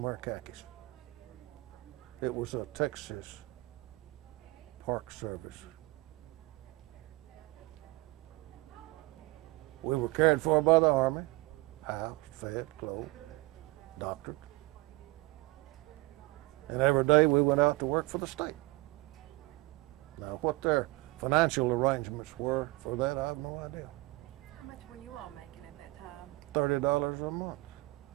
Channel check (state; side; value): quieter; left; 22.4 dB